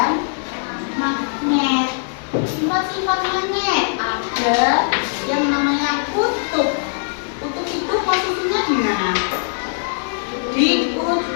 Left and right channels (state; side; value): silent; right; digital silence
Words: magnet. Sifat-sifat magnet ada yang namanya kutub. Kutub itu posisinya di mana? Di